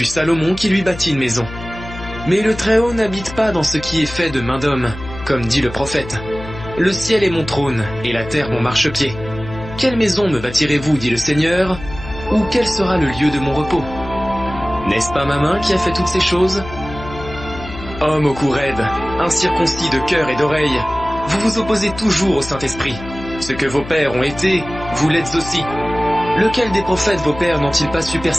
Salomon qui lui bâtit une maison. Mais le Très-Haut n'habite pas dans ce qui est fait de main d'homme, comme dit le prophète. Le ciel est mon trône, et la terre mon marchepied. Quelle maison me bâtirez-vous, dit le Seigneur, ou quel sera le lieu de mon repos? N'est-ce pas ma main qui a fait toutes ces choses? Homme au cou raide, incirconcis de cœur et d'oreille, vous vous opposez toujours au Saint-Esprit. Ce que vos pères ont été, vous l'êtes aussi. Lequel des prophètes vos pères n'ont-ils pas su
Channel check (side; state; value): left; noise; hum, 13 dB below the sound